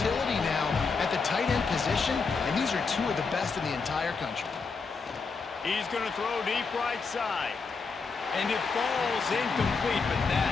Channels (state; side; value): quieter; right; 4.8 dB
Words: now at the tight end position, and these are two of the best in the entire country. He's going to throw deep right side. And it falls incomplete, but